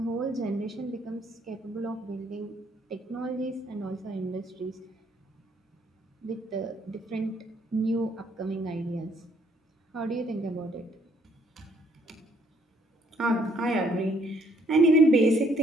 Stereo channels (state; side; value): normal; both; correlation 0.67